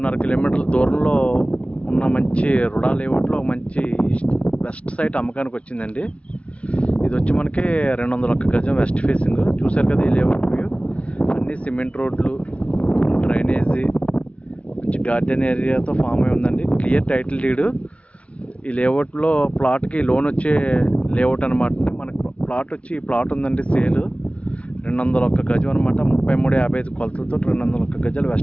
కిలోమీటర్ల దూరంలో ఉన్న మంచి రుడా లేఅవుట్లో మంచి వెస్ట్ సైట్ అమ్మకానికి వచ్చిందండి. ఇది వచ్చి మనకి 201 గజం వెస్ట్ ఫేసింగ్. చూసారు కదా ఈ లేఅవుట్ వ్యూ. అన్నీ సిమెంట్ రోడ్లు, డ్రైనేజీ, మంచి గార్డెన్ ఏరియాతో ఫామ్ అయి ఉందండి. Clear title deed. ఈ లేఅవుట్లో ప్లాట్కి లోన్ వచ్చే లేఅవుట్ అనమాట. మనకు ప్లాట్ వచ్చి ఈ ప్లాట్ ఉందండి సేల్. 201 గజం అనమాట. 33.55 కొలతలతో 201 గజాలు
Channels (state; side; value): late; right; 0.063 ms